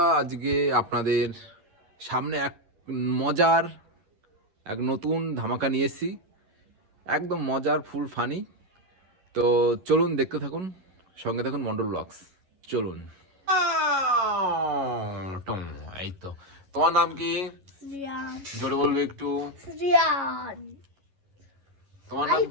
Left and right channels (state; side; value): late; left; 11 ms